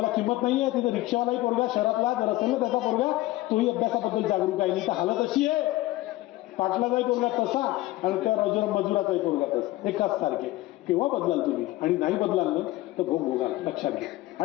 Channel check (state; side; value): quieter; right; 17.7 dB